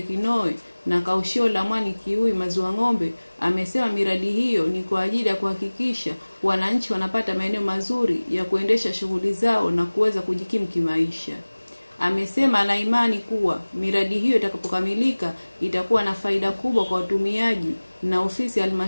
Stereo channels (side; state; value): both; inverted; correlation -1.00